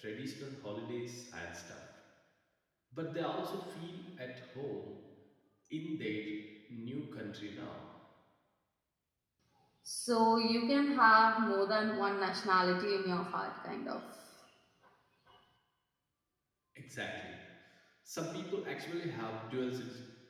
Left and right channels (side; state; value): both; identical; correlation 1.00